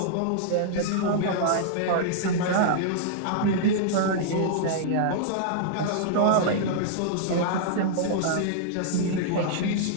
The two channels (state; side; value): different; both; correlation -0.01